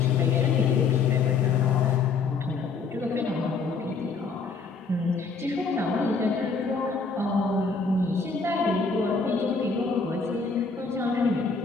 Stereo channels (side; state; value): right; quieter; 4.8 dB